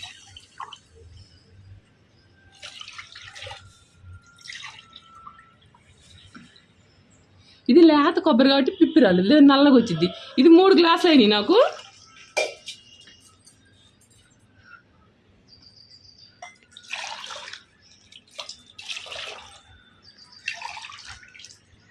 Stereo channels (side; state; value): both; identical; correlation 1.00